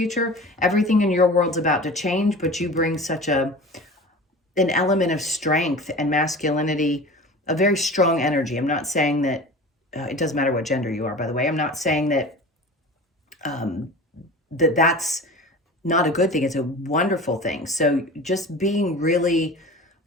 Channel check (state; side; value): normal; both; correlation 0.36